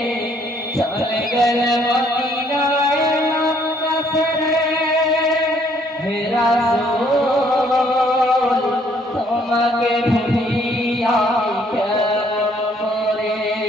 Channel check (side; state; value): both; normal; correlation 0.65